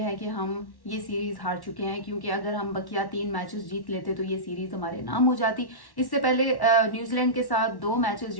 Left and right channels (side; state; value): right; late; 1.1 ms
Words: है कि हम ये सीरीज हार चुके हैं, क्योंकि अगर हम बकिया 3 मैचेस जीत लेते तो ये सीरीज हमारे नाम हो जाती। इससे पहले न्यूजीलैंड के साथ 2 मैचेस